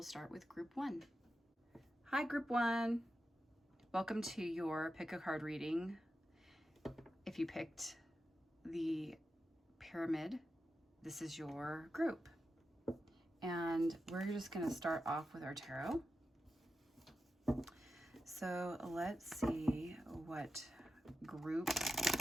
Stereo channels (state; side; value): normal; both; correlation 0.90